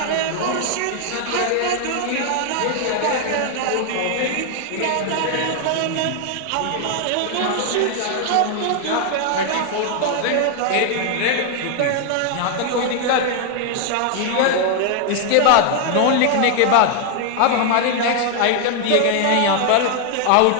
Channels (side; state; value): both; different; correlation 0.00